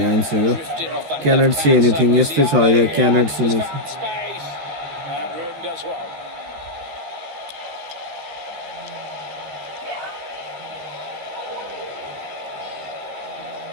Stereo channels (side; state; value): left; late; 13 ms